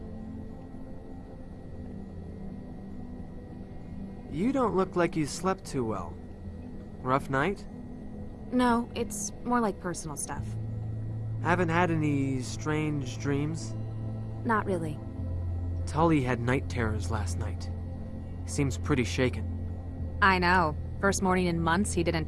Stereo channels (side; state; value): both; identical; correlation 1.00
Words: You don't look like you slept too well. Rough night? No, it's more like personal stuff. Haven't had any strange dreams? Not really. Tully had night terrors last night. Seems pretty shaken. I know. First morning in months, he didn't